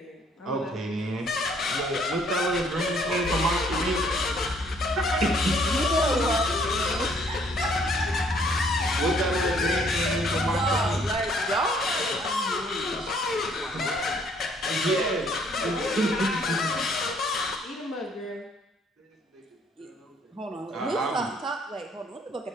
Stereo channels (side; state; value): both; normal; correlation 0.63